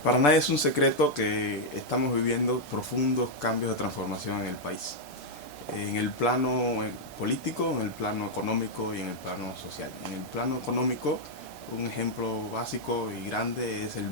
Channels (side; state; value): both; normal; correlation -0.02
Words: Para nadie es un secreto que estamos viviendo profundos cambios de transformación en el país, en el plano político, en el plano económico y en el plano social. En el plano económico, un ejemplo básico y grande es el